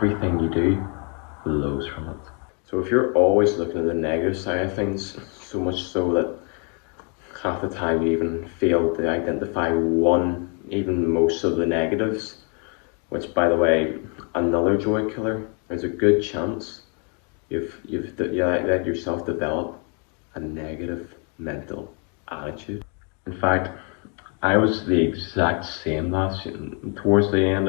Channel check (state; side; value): quieter; right; 37.8 dB